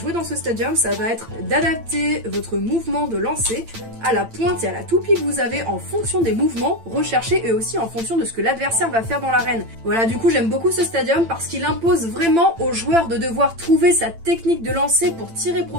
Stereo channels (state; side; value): late; left; 8.9 ms